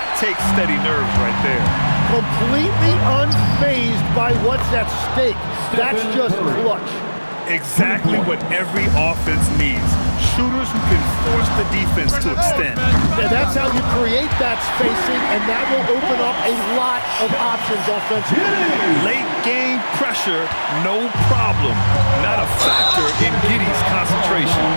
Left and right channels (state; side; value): inverted; both; correlation -1.00